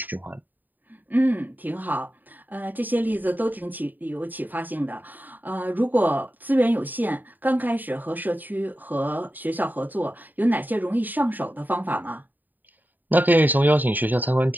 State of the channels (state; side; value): late; left; 0.087 ms